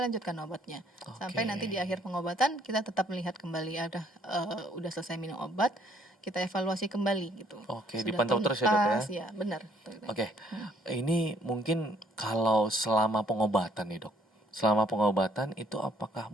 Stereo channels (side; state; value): both; normal; correlation 0.65